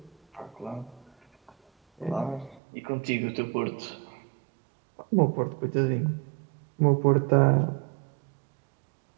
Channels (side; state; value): left; drops out; at 2.6 s